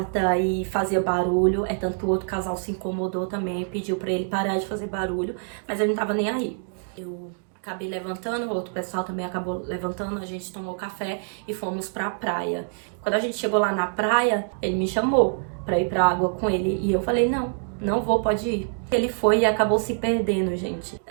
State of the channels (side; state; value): left; silent; 61 dB below the other